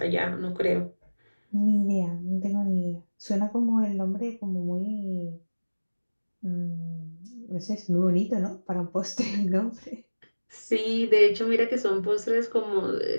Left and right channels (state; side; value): inverted; both; correlation -1.00